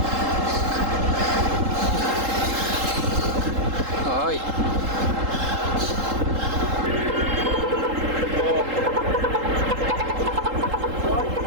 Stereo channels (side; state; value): left; late; 3.8 ms